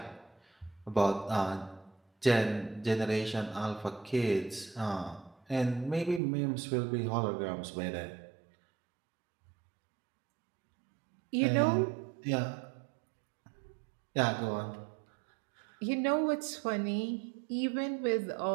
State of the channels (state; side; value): drops out; left; at 6.2 s